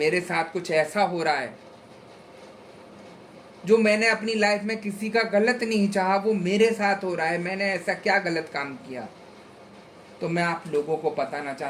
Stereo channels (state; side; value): identical; both; correlation 1.00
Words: साथ कुछ ऐसा हो रहा है जो मैंने अपनी लाइफ में किसी का गलत नहीं चाहा, वो मेरे साथ हो रहा है, मैंने ऐसा क्या गलत काम किया। तो मैं आप लोगों को बताना